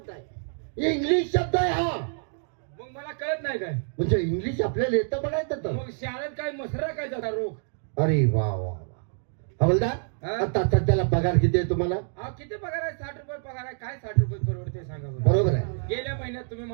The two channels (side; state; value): left; silent; 60 dB below the other